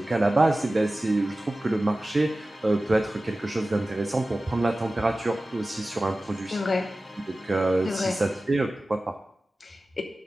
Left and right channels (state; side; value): normal; both; correlation 0.96